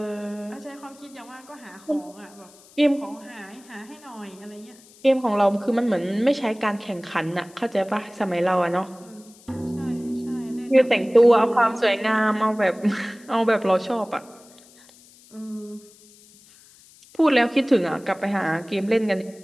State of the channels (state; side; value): noise; left; hiss, 25 dB below the sound